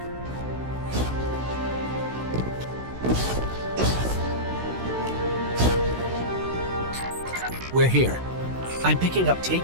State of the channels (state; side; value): late; left; 16 ms